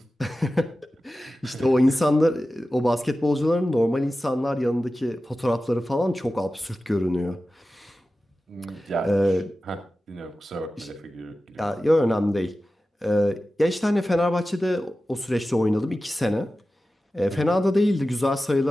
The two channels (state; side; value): normal; both; correlation 0.94